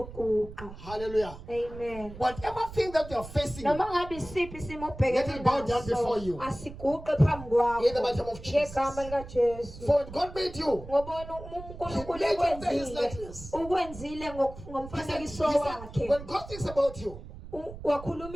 Hallelujah. Amen. Whatever thing that you are facing, let it bow down before you. In the mighty name of Jesus. For when God made you, He made you after His likeness. When God thinks about you, when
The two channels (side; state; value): right; noise; rumble, 14 dB below the sound